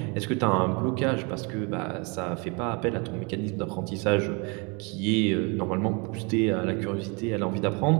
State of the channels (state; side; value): quieter; left; 31.2 dB